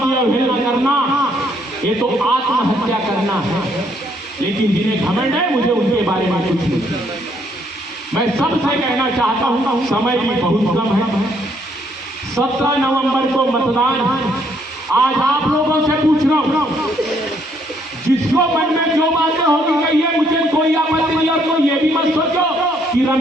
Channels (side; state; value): both; normal; correlation 0.69